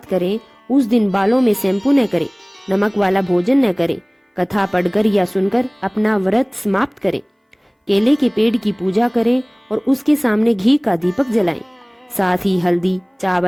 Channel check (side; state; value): both; identical; correlation 1.00